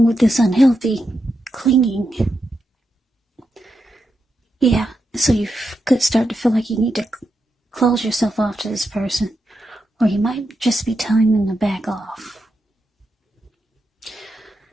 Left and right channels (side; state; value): both; normal; correlation 0.86